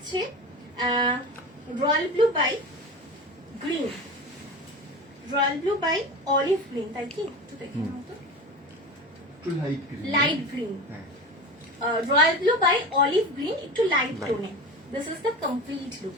royal blue by green, royal blue by olive green, তাই কি? একটু দেখে নাও তো। Light green, royal blue by olive green, একটু লাইট টোনে। This is the complete look.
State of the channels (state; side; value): normal; both; correlation 0.30